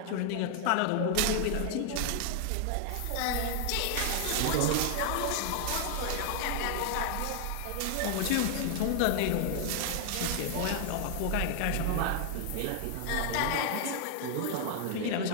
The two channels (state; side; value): different; both; correlation 0.00